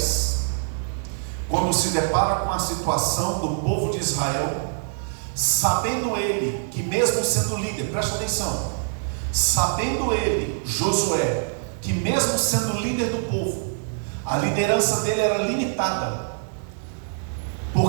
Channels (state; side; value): silent; left; digital silence